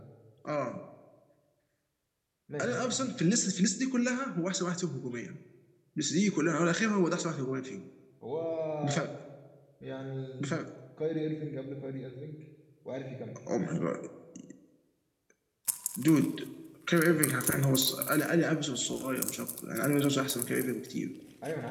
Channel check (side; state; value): both; identical; correlation 1.00